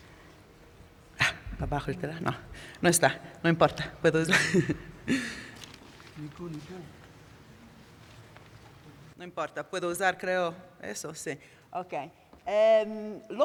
Abajo el teléfono. No, no está, no importa. ¿Puedo usar? No importa, puedo usar, creo, eso, sí. Ok.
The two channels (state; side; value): identical; both; correlation 1.00